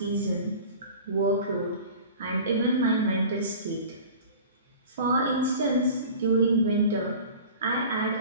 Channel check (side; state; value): both; inverted; correlation -0.39